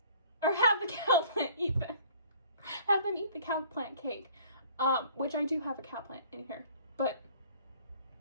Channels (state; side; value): inverted; both; correlation -0.53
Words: Or have the cow plant eat them. Have them eat the cow plant cake. Which I do have a cow plant in here. But